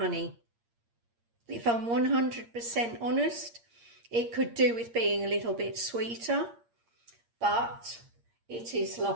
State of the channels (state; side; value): late; left; 8.6 ms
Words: If I'm 100% honest, it could do with being a little bit sweeter, but it is